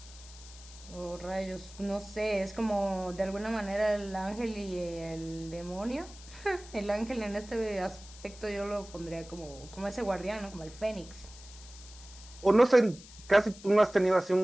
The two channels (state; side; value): noise; left; hiss, 18 dB below the sound